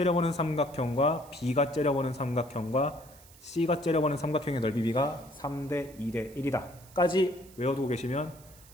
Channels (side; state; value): right; noise; hiss, 23 dB below the sound